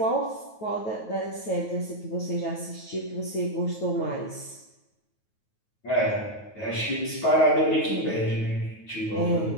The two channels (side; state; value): right; late; 9.4 ms